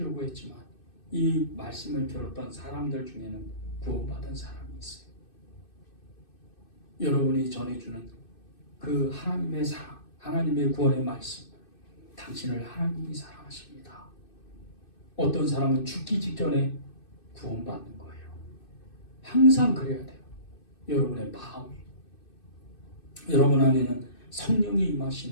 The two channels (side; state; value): right; late; 2.6 ms